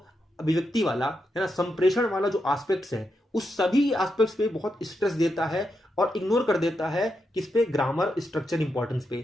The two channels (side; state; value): both; normal; correlation 0.84